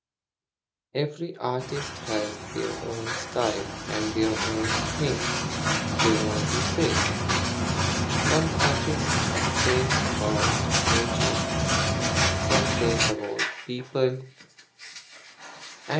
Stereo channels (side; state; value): both; identical; correlation 1.00